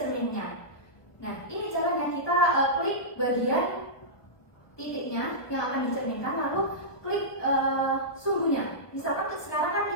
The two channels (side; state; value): right; late; 1.2 ms